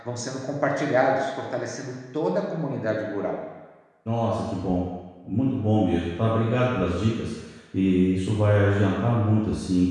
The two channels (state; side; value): identical; both; correlation 1.00